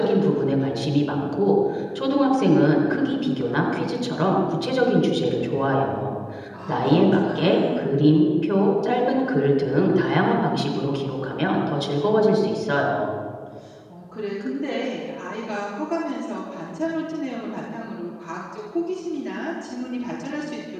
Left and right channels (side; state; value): both; identical; correlation 1.00